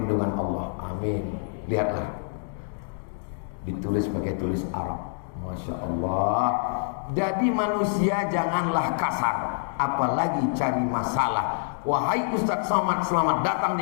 Allah. Amin. Lihatlah, ditulis pakai tulis Arab. Masya Allah. Jadi manusia janganlah kasar, apalagi cari masalah. Wahai Ustaz Somad, selamat datang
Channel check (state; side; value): silent; right; digital silence